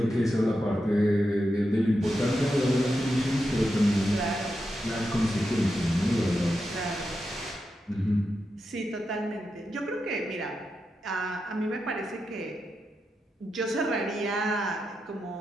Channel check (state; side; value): normal; both; correlation 0.87